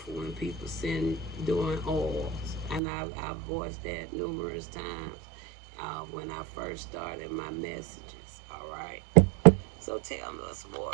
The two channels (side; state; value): left; drops out; at 2.8 s